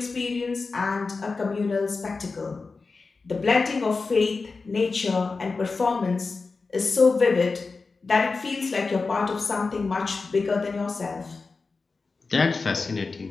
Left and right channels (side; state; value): right; quieter; 4.2 dB